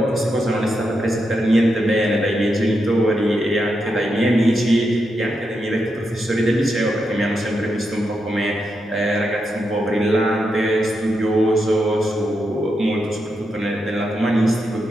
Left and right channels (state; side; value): normal; both; correlation 0.84